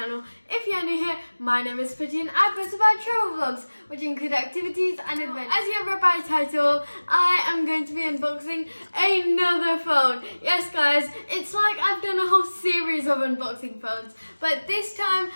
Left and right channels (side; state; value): both; inverted; correlation -1.00